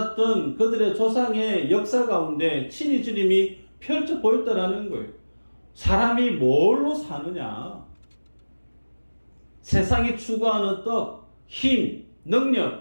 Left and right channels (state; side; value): inverted; both; correlation -1.00